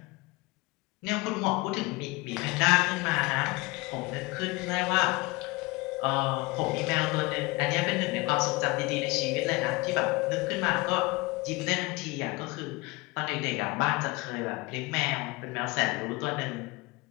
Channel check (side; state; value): right; quieter; 23.2 dB